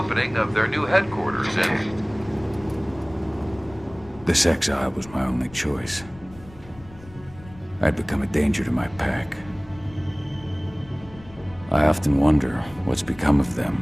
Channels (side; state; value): left; noise; rumble, 21 dB below the sound